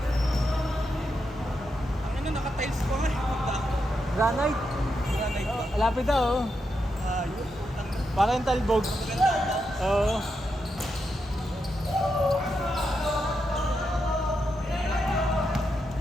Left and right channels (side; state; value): both; normal; correlation 0.84